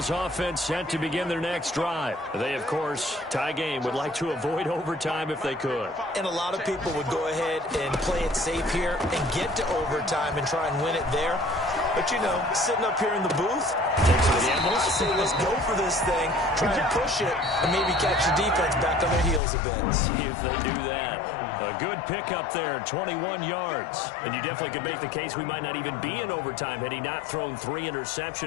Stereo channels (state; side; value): drops out; right; at 19.4 s